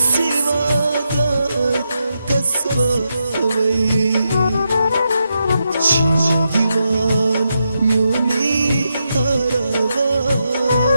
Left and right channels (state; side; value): inverted; both; correlation -0.84